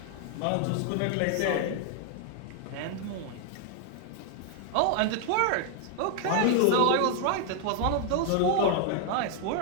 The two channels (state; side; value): different; both; correlation 0.00